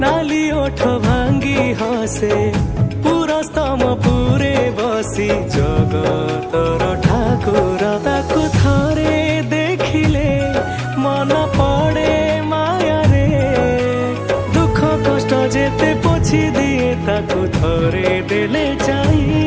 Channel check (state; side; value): identical; both; correlation 1.00